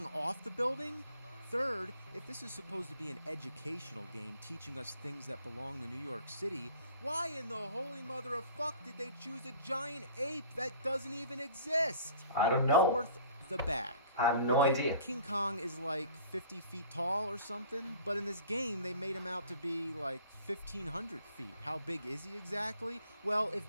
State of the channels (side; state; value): both; inverted; correlation -0.48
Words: off the building? Third, if this is supposed to be an educational game teaching us things that belong to New York City, why in the holy mother of fuck did they choose a giant ape that doesn't even exist? I don't know. Fourth, the bag. I have no Okay, idea. King Kong is like 50 feet tall or something, but in this game they made him out to be like 1,500 feet. How big is he exactly? Well, if